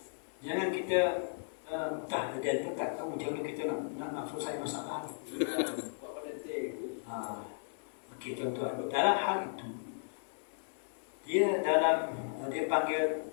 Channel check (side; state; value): right; silent; 54 dB below the other